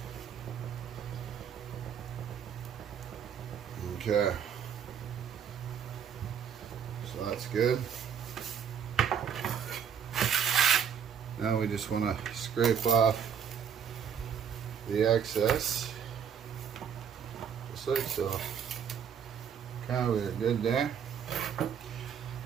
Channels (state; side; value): quieter; left; 7.9 dB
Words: Okay, so that's good. Now we just want to scrape off the excess, just like so. Okay, we're good there.